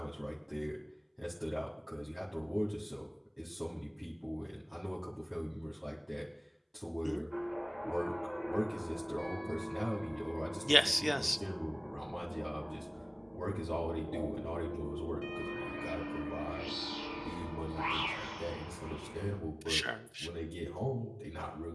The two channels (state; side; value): identical; both; correlation 1.00